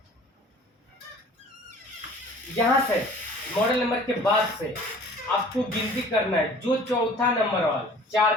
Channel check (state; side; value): normal; both; correlation 0.48